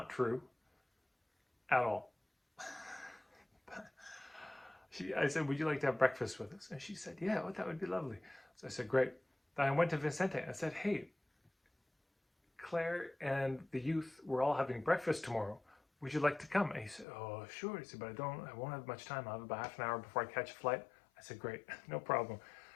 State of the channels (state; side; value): drops out; right; at 17.1 s